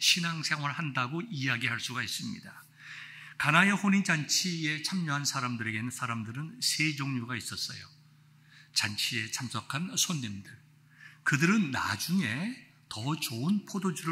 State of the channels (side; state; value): both; identical; correlation 1.00